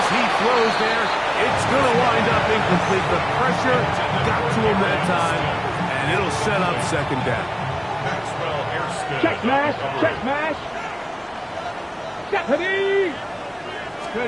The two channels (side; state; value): both; identical; correlation 1.00